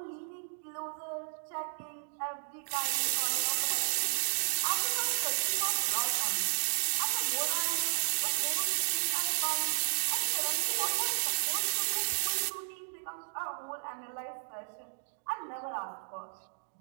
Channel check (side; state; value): left; silent; digital silence